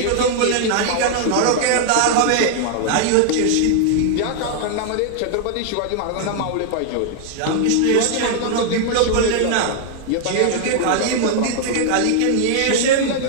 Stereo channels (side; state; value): both; different; correlation -0.01